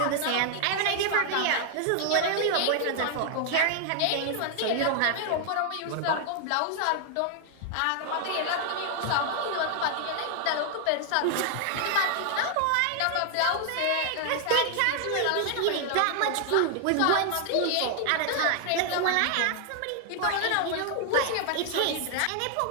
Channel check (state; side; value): different; both; correlation 0.00